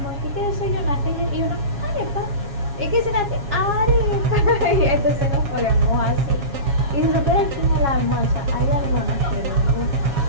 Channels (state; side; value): late; left; 7.2 ms